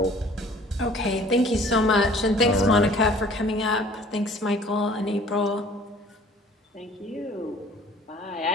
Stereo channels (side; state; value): both; normal; correlation 0.51